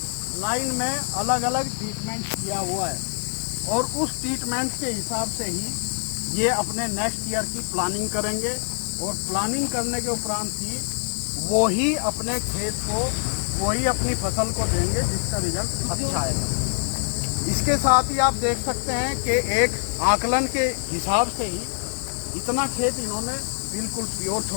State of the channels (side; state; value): right; silent; digital silence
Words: लाइन में अलग अलग ट्रीटमेंट किया हुआ है, और उस ट्रीटमेंट के हिसाब से ही ये अपने नेक्स्ट ईयर की प्लानिंग करेंगे, और प्लानिंग करने के उपरांत ही वो ही अपने खेत को, वो ही अपनी फसल को देंगे जिसका रिजल्ट अच्छा आएगा। इसके साथ ही आप देख सकते हैं कि एक आकलन के हिसाब से ही इतना खेत इन्होंने बिल्कुल प्योर